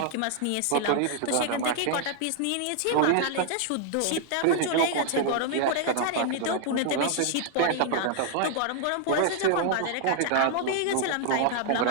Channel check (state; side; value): different; both; correlation 0.00